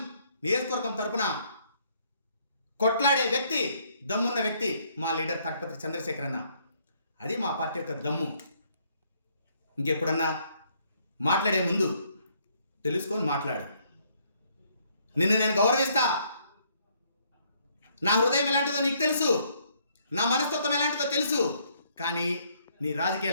నియోజకవర్గం తరపున కొట్లాడే వ్యక్తి, దమ్మున్న వ్యక్తి మా లీడర్ తాటిపత్రి చంద్రశేఖర్ అన్న. అది మా పార్టీ యొక్క దమ్ము. ఇంకెప్పుడన్నా మాట్లాడే ముందు తెలుసుకొని మాట్లాడు. నిన్ను నేను గౌరవిస్తా. నా హృదయం ఎలాంటిదో నీకు తెలుసు, నా మనస్తత్వం ఎలాంటిదో తెలుసు. కానీ నీ రాజకీయ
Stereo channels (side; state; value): both; inverted; correlation -0.68